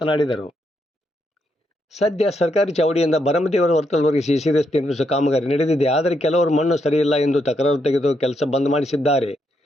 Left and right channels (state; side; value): normal; both; correlation 0.79